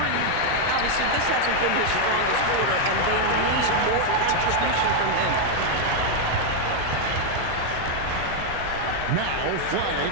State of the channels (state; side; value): different; both; correlation 0.00